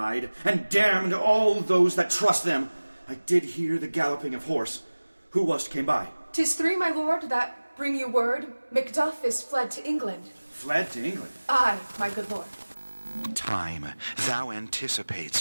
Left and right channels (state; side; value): inverted; both; correlation -1.00